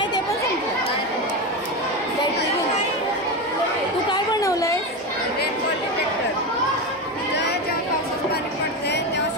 ते पण संपलं. बॅटरी तू काय बनवलंय? Rainfall detector. जेव्हा पावसाचं पाणी पडते तेव्हा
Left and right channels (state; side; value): normal; both; correlation 0.17